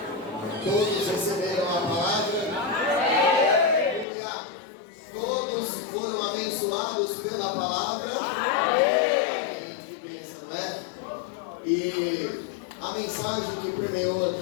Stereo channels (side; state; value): right; drops out; at 4.0 s